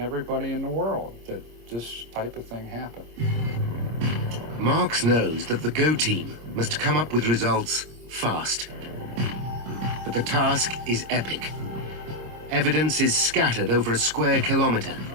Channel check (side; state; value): left; late; 26 ms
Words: in the world that this type of thing happened. Marks knows that the GO team must come up with results fast. But the task is epic. Evidence is scattered over a square kilometer,